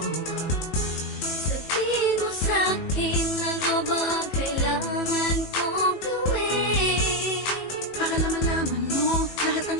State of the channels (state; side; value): late; right; 18 ms